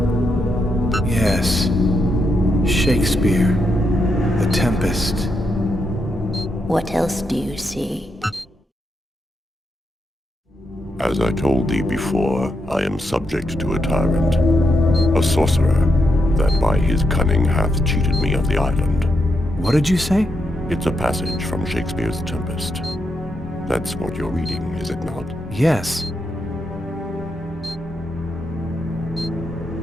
Yes. Shakespeare. The Tempest. What else do you see? As I told thee before, I am subject to a tyrant, a sorcerer, that by his cunning hath cheated me of the island. What did you say? It's a passage from Shakespeare's Tempest. That's what you're reading, is it not? Yes.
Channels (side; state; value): both; normal; correlation 0.82